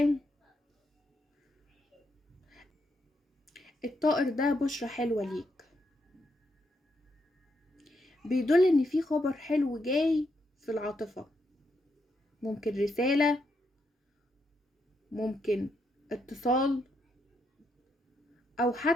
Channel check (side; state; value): both; normal; correlation 0.79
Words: الطائر ده بشرة حلوة ليك، بيدل ان في خبر حلو جاي في العاطفة. ممكن رسالة، ممكن اتصال، او